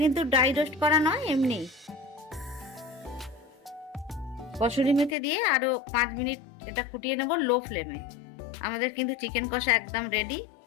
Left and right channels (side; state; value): right; drops out; at 5.2 s